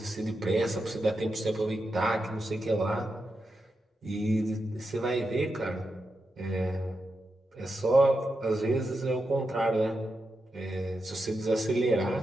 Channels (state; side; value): normal; both; correlation 0.87